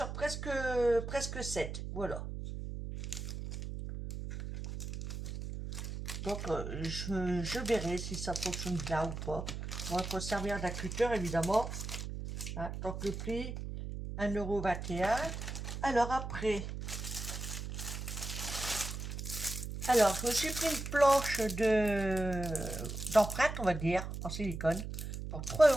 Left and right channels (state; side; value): noise; right; hum, 6 dB below the sound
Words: presque 7, voilà. Donc, je verrai si ça fonctionne bien ou pas. On va s'en servir d'un cutter, évidemment. Hein, donc, le prix, 1,21 €. Alors, après, je me suis pris une planche d'empreinte, on va dire, en silicone, pour